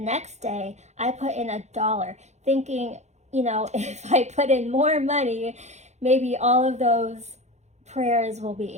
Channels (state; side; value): late; left; 0.33 ms